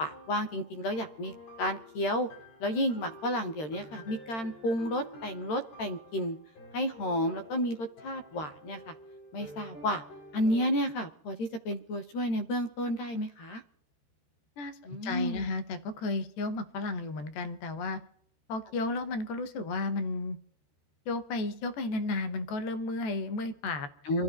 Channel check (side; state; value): right; late; 13 ms